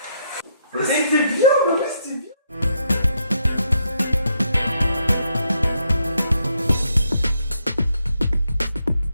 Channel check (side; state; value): both; inverted; correlation -0.76